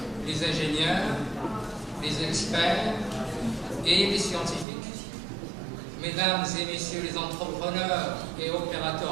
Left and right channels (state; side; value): drops out; left; at 4.7 s